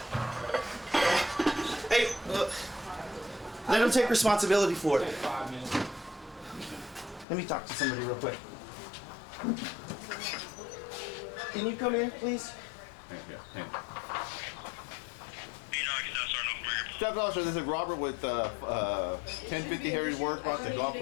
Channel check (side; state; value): right; drops out; at 7.2 s